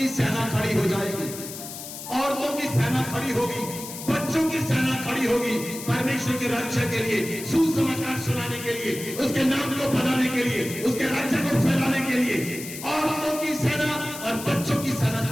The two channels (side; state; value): left; noise; hiss, 10 dB below the sound